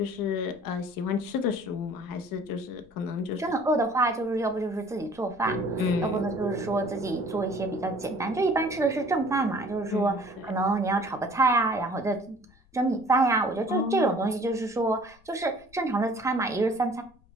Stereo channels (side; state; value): left; noise; rumble, 30 dB below the sound